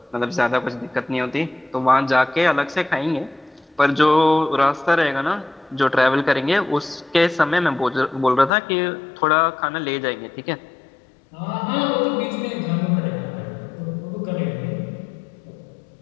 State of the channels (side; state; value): right; drops out; at 8.5 s